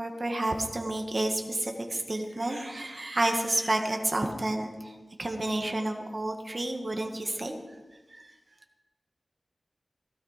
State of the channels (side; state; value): both; normal; correlation 0.98